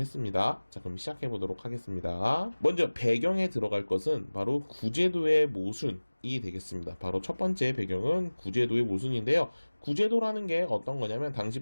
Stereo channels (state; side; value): inverted; both; correlation -1.00